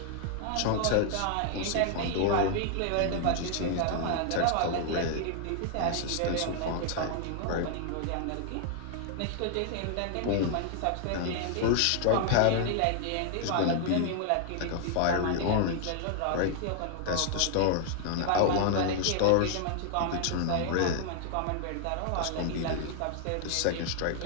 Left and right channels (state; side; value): different; both; correlation 0.00